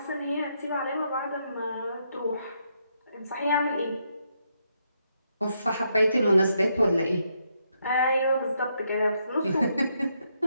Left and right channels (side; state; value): both; inverted; correlation -0.78